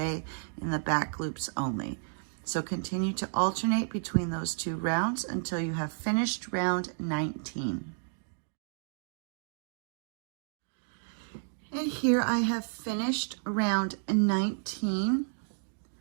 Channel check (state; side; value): silent; left; digital silence